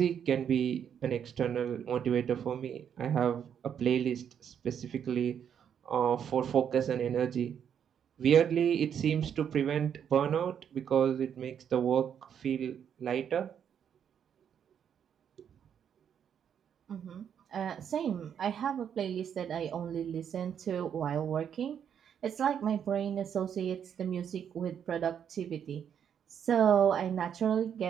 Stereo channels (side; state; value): left; quieter; 8.4 dB